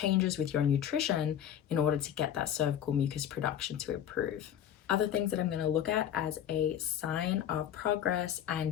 with your nutrition in order to get that cervical mucus production to improve. Other things that I'm going to look at as a sign of progress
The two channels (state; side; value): quieter; right; 10.1 dB